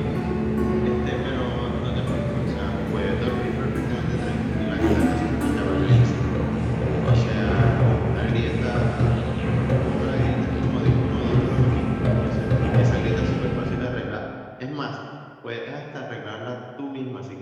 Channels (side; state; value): both; identical; correlation 1.00